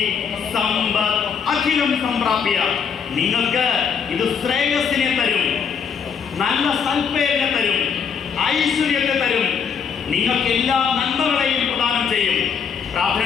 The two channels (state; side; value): quieter; right; 6.7 dB